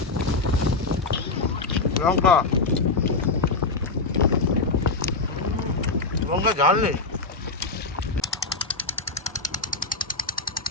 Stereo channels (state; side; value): quieter; right; 3.8 dB